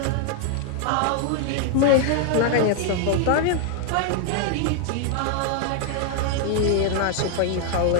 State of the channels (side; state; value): both; different; correlation 0.00